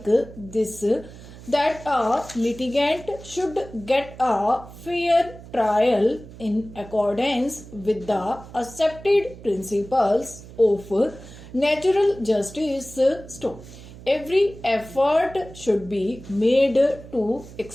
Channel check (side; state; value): right; noise; hum, 17 dB below the sound